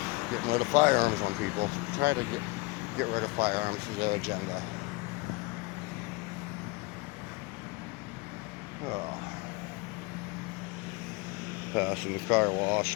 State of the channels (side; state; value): right; quieter; 24.7 dB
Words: getting rid of firearms on people. Try to get rid of firearms is their agenda. Well, passing the car